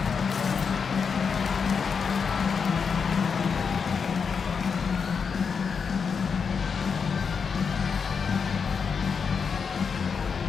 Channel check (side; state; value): right; quieter; 5.9 dB